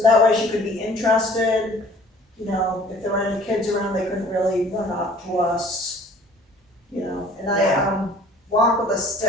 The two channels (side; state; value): both; normal; correlation 0.52